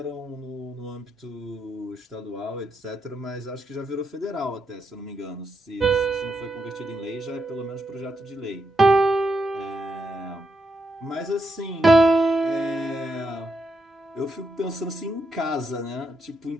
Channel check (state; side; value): normal; both; correlation 0.81